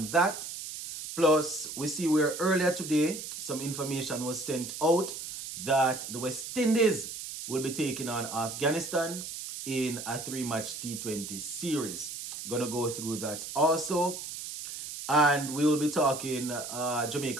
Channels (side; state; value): right; noise; hiss, 8 dB below the sound